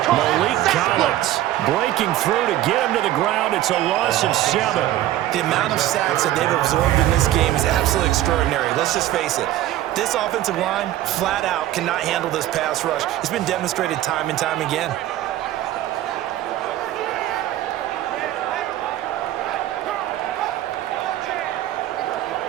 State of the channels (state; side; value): quieter; left; 13.8 dB